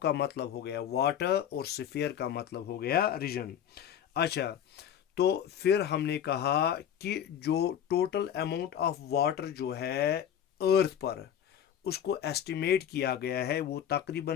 मतलब हो गया वाटर और स्फीयर का मतलब हो गया रीजन। अच्छा, तो फिर हमने कहा कि जो टोटल अमाउंट ऑफ वाटर जो है अर्थ पर, उसको एस्टिमेट किया गया है, वो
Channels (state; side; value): quieter; right; 9.5 dB